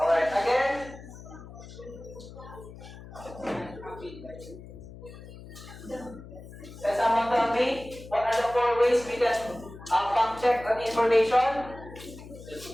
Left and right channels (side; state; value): left; noise; hum, 16 dB below the sound